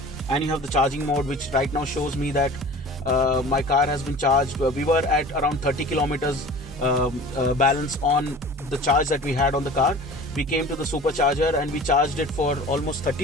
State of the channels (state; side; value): normal; both; correlation 0.41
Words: And you have the charging mode, which right now shows me that my car has been charged. We were at around 30 kilometers balance on the charge that we had on the car. We came to the supercharger and we charged it for almost